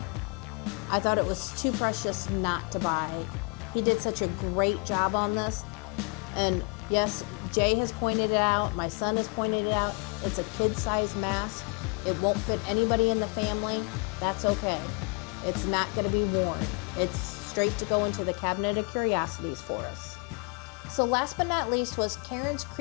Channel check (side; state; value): right; quieter; 32.8 dB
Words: I thought it was too precious not to buy. He did such a great job on this. And yes, Jay has pointed it out. My son has pointed it out. It's a kid-sized mask. It won't fit anybody in the family. That's okay. It's not going to be worn. It's straight to go into the cabinet of curiosities for us. So last but not least was Karen's